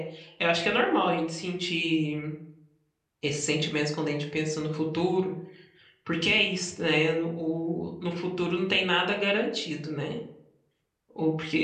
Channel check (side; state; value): both; identical; correlation 1.00